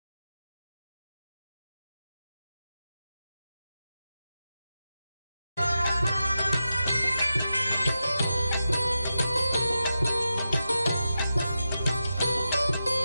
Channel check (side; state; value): both; inverted; correlation -0.90